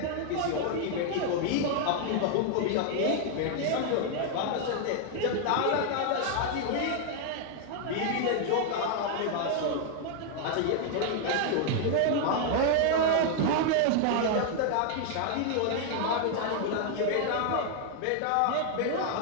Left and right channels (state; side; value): different; both; correlation 0.00